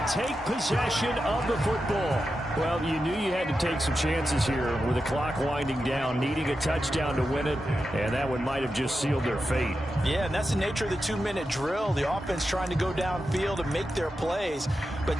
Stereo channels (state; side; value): normal; both; correlation 0.90